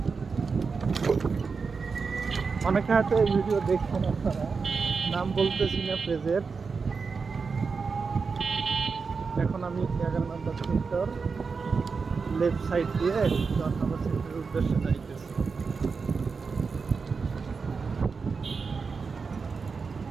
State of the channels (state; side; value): quieter; left; 5.0 dB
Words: অনেকে হয়তো এই ভিডিও দেখছেন, আপনারা নাম বলতেছি না পেজের। এখন আমি 11 নম্বর সেক্টর লেফট সাইড দিয়ে 10 নম্বর সেক্টরের উদ্দেশ্যে যাইতেছি।